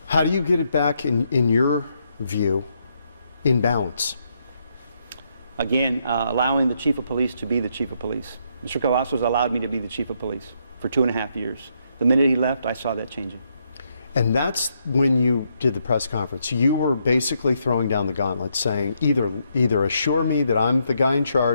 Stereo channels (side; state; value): both; inverted; correlation -0.76